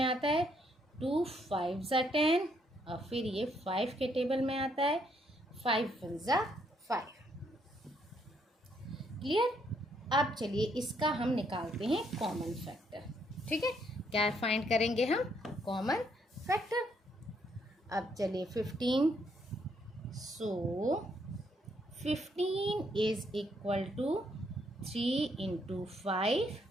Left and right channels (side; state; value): both; normal; correlation 0.72